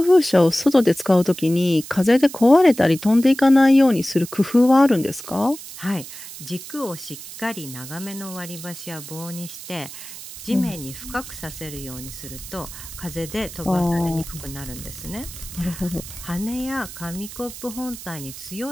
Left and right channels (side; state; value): right; noise; hiss, 13 dB below the sound